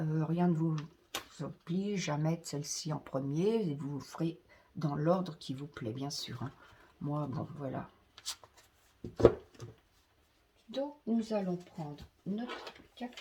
ne vous oblige à mettre celle-ci en premier, et vous ferez dans l'ordre qui vous plaît, bien sûr. Hein. Moi, bon, voilà. Donc, nous allons prendre notre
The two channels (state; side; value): identical; both; correlation 1.00